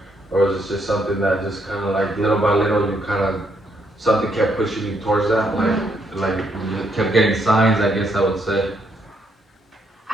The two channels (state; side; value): normal; both; correlation 0.74